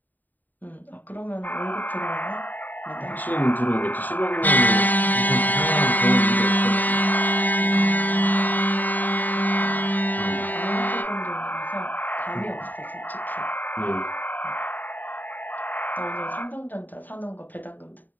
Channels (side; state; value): right; late; 0.086 ms